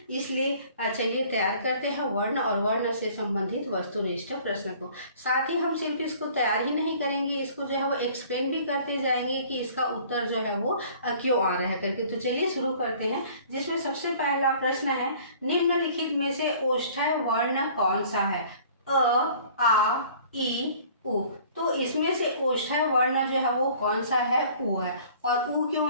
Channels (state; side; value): inverted; both; correlation -0.51